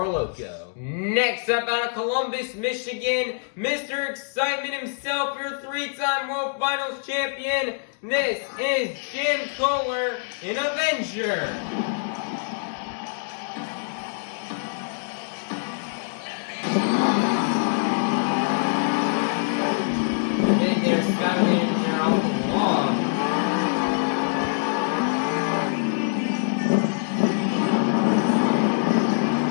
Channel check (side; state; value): right; silent; digital silence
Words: Loco. Next up, out of Columbus, Michigan, Mr. Excitement himself, your three-time World Finals champion. This is Jim Kohler, an Avenger. Big there, Skylander there off the wall.